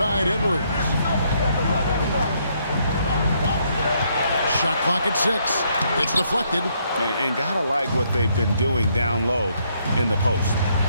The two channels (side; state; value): both; inverted; correlation -0.72